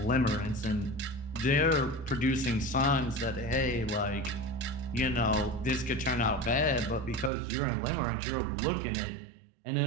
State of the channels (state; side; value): drops out; left; at 7.3 s